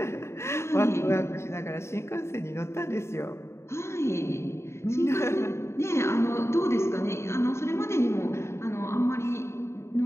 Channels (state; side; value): late; right; 0.13 ms